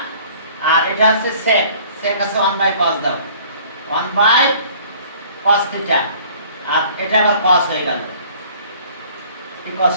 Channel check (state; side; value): inverted; both; correlation -0.52